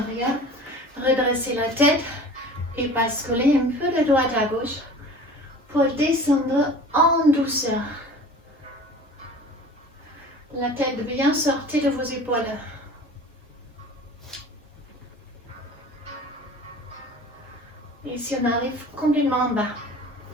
Redressez la tête et basculez un peu de droite à gauche pour descendre en douceur. La tête bien sortie de vos épaules. Ici, on arrive complètement en bas.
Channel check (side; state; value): both; normal; correlation 0.42